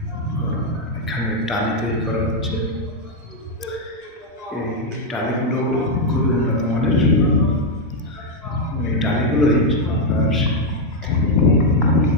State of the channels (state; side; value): normal; both; correlation 0.01